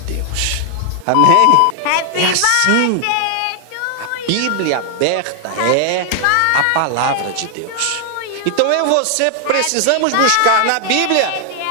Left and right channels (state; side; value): different; both; correlation 0.00